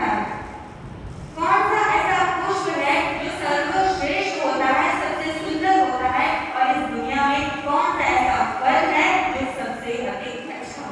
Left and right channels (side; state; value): both; identical; correlation 1.00